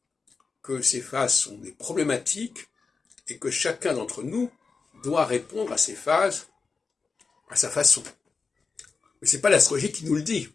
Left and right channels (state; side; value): quieter; right; 4.7 dB